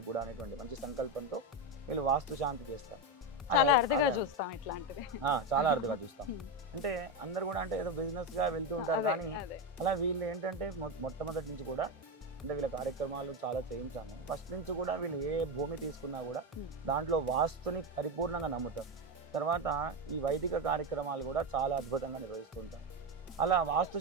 కూడా అనేటువంటి మంచి సంకల్పంతో వీళ్ళు వాస్తు శాంతి చేస్తారు. చాలా అరుదుగా చూస్తాం. అంటే అందరు కూడా అంటే ఏదో బిజినెస్ గా వెళ్తూ ఉంటారు, కానీ అలా వీళ్ళు ఏంటంటే మొట్టమొదటి నుంచి కూడా అంటే వీళ్ళ కార్యక్రమాలు చాలా చేయించాము. ఫస్ట్ నుంచి కూడా వీళ్ళు ఏ భూమి తీసుకున్నా కూడా దాంట్లో వాస్తుని పరిపూర్ణంగా నమ్ముతారు. తర్వాత ఈ వైదిక కార్యక్రమాలు కూడా చాలా అద్భుతంగా నిర్వహిస్తుంటారు. అలా వాస్తు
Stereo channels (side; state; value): both; normal; correlation 0.12